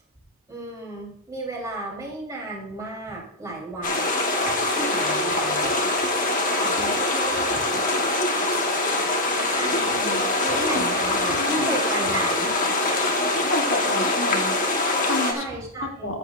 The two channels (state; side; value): normal; both; correlation -0.05